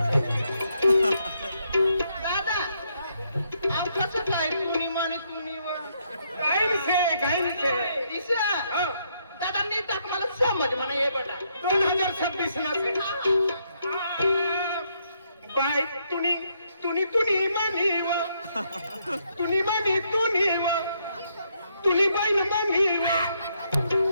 दादा आव कसं काय तुम्ही म्हणे तुम्ही काय ईशा दादा नीट मला समज म्हणा हे बघा 2026 ला बाय तुनी तुनी तुनी म्हणीव तुनी म्हणी तुनी बाई म्हणीव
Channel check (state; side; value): inverted; both; correlation -0.75